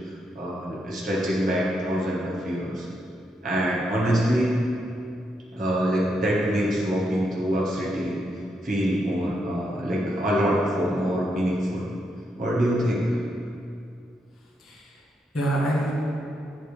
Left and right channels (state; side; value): normal; both; correlation 0.81